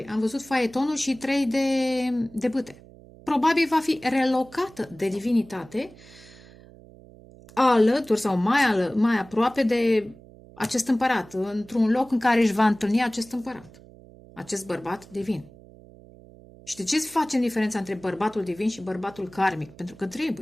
Am văzut faetonul și 3 de bâte. Probabil va fi relocată de divinitate alături sau mai aproape de acest împărat, într-un loc în care își va întâlni acest împărat, acest bărbat divin. Și de ce facem diferența între bărbatul divin și bărbatul karmic? Pentru că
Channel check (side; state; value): right; noise; hum, 22 dB below the sound